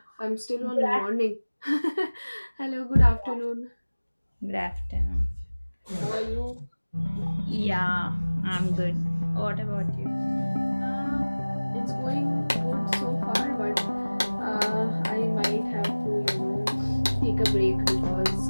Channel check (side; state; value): both; inverted; correlation -1.00